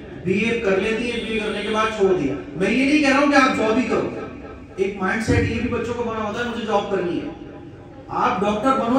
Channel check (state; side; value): identical; both; correlation 1.00